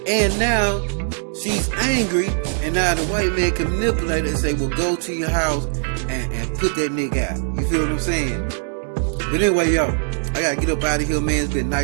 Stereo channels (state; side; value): silent; left; digital silence